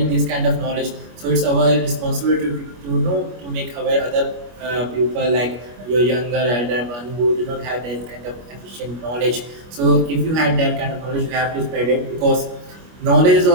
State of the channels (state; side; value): late; left; 25 ms